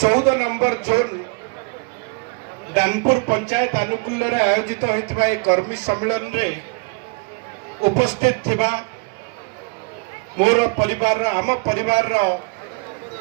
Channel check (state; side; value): quieter; left; 31.0 dB